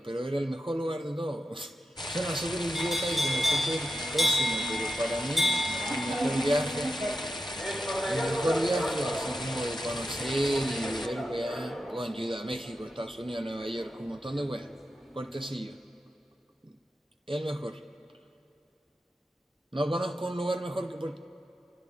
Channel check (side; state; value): both; normal; correlation 0.89